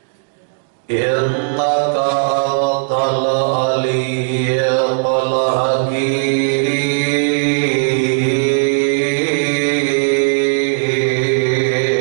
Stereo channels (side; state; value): left; silent; digital silence